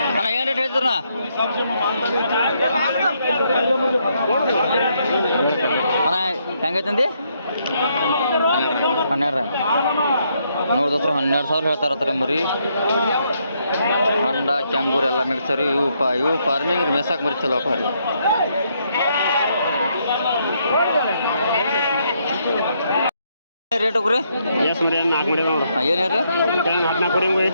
ಅಣ್ಣ ಏನು ರೇಟ್ ಹೇಳ್ತೀರಣ್ಣ ಅಣ್ಣ ಹೆಂಗೈತಂದಿ 12 ನೋಡಿ ದೋಸ್ರಿ 12,000 ಹೇಳ್ತಾರತ್ತಾರೆ ಮರಿ ಕಂಡ ಕ್ಯಾಂಗೂರ್ ಎಲ್ಲ ಮಿಕ್ಸರಿ ಇವು ಫಾರ್ಮಿಂಗ್ ಮೇಸಾಕ್ ಮರಿ ಚಲೋ ಅಪ್ಪ ರೀ ರೇಟ್ ಹೋಗ್ರಿ ಎಷ್ಟು ಮರಿ 4 ಮರಿ ನೋಡು ಏನು ಹೇಳ್ರಿ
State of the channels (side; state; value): both; inverted; correlation -0.75